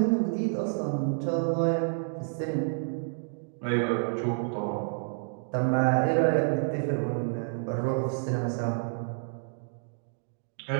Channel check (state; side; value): silent; left; digital silence